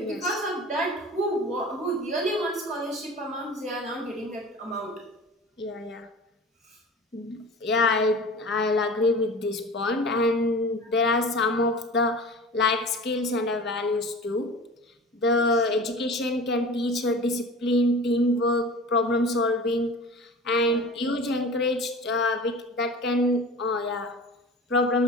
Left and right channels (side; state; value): both; normal; correlation 0.37